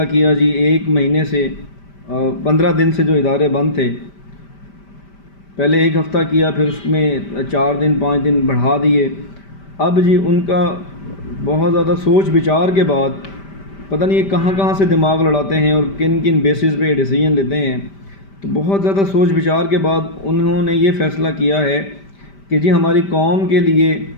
کیا جی، 1 مہینے سے 15 دن سے جو ادارے بند تھے، پہلے 1 ہفتہ کیا، پھر اس میں 4 دن 5 دن بڑھا دیے۔ اب جی ان کا بہت زیادہ سوچ بچار کے بعد پتہ نہیں یہ کہاں کہاں سے دماغ لڑاتے ہیں اور کن کن بیسز پہ ڈیسیجن لیتے ہیں، تو بہت زیادہ سوچ بچار کے بعد انہوں نے یہ فیصلہ کیا ہے کہ جی ہماری قوم کے لیے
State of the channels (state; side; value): late; right; 5.1 ms